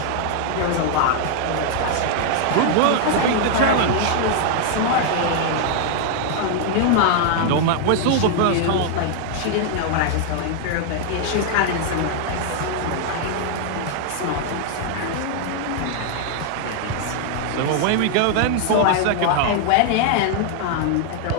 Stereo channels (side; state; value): both; different; correlation 0.00